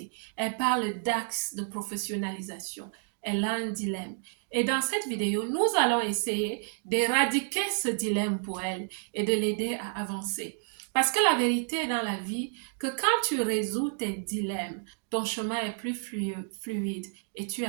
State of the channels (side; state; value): left; silent; digital silence